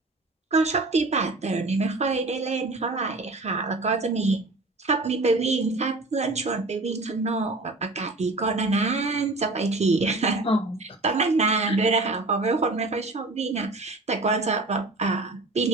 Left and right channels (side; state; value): left; quieter; 3.1 dB